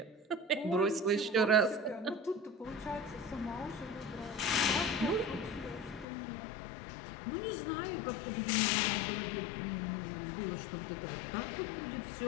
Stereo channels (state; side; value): drops out; right; at 6.1 s